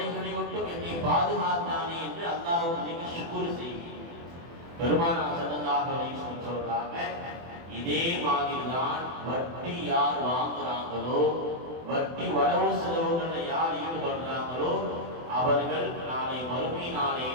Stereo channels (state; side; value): late; left; 24 ms